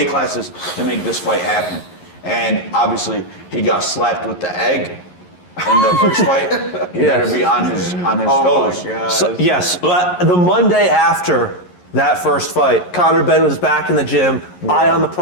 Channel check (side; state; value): right; late; 11 ms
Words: classes to make this fight happen. And obviously, he got slapped with the egg in the first fight. He Yes. better be on his Oh toes. my God. So, yes, but the Monday after that first fight, Conor Benn was back in the gym, eye on the